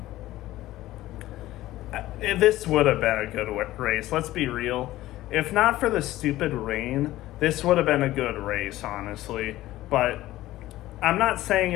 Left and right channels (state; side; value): quieter; right; 15.8 dB